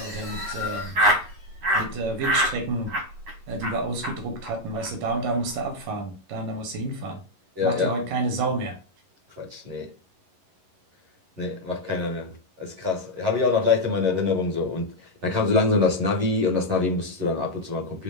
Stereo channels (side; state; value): left; late; 11 ms